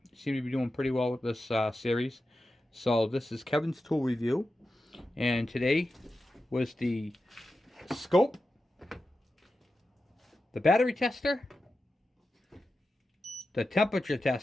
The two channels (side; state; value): both; normal; correlation 0.91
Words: to be doing pretty well with this series. So this is Kevin's Tool Review. And today was the scope, the battery tester, the temperature